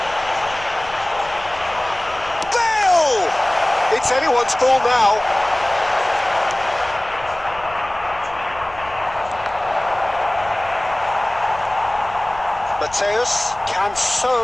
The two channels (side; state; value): left; noise; rumble, 20 dB below the sound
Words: Bale! It's anyone's ball now. Mateus can